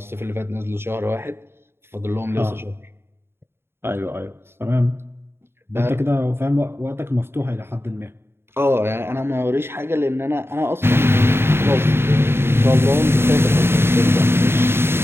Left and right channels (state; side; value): late; left; 0.11 ms